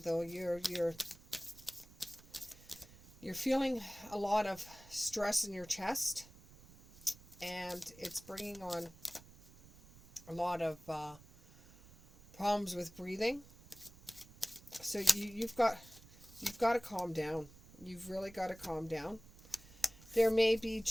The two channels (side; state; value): right; noise; rumble, 22 dB below the sound